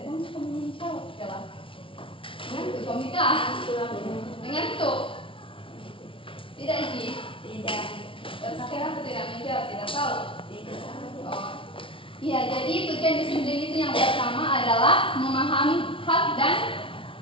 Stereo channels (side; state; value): right; late; 0.25 ms